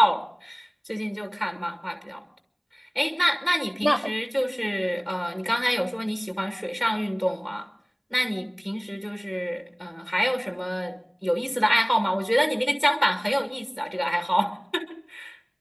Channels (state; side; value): identical; both; correlation 1.00